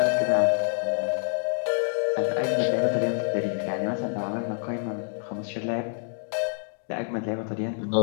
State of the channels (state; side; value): silent; right; digital silence